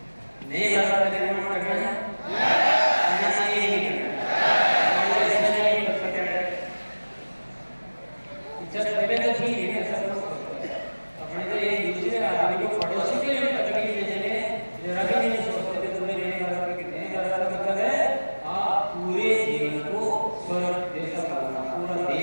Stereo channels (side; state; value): both; inverted; correlation -1.00